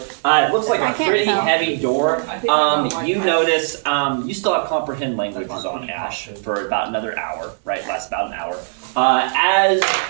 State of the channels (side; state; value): left; silent; digital silence